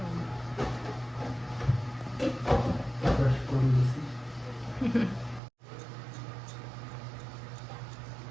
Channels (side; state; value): left; drops out; at 5.4 s